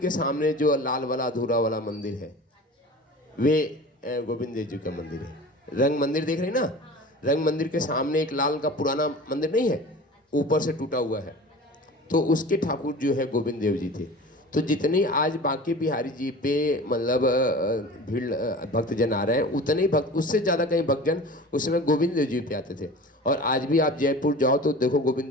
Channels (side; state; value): both; normal; correlation 0.38